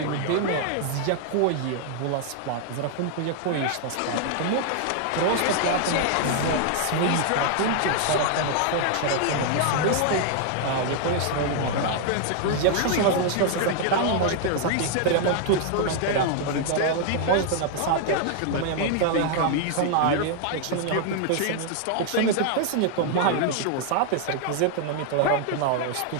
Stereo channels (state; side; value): different; both; correlation 0.00